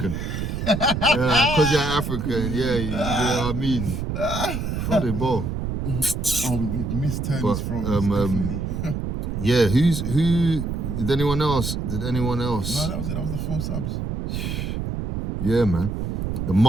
Because you're African, yeah, you know what I mean. Throw the ball. Oh, we missed Tony's throws, definitely. Yeah, who? Did anyone else? No, that was it. That was the 4 subs. Yeah, man. The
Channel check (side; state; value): right; noise; rumble, 3 dB below the sound